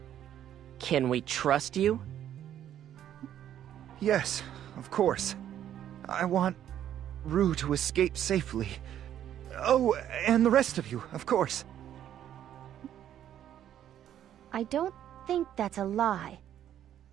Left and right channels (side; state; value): left; quieter; 10.8 dB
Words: Can we trust you? Yes, of course. I want Rue to escape safely. Oh, and the rest of you, of course. I don't think that's a lie.